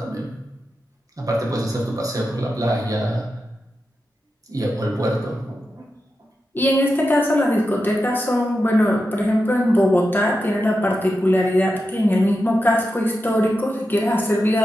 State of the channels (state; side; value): normal; both; correlation 0.89